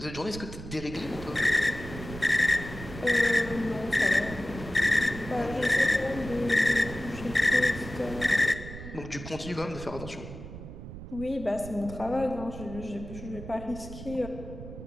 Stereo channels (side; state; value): right; noise; rumble, 11 dB below the sound